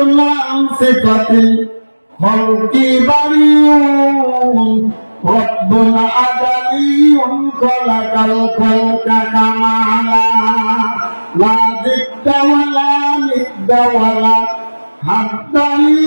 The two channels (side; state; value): both; inverted; correlation -1.00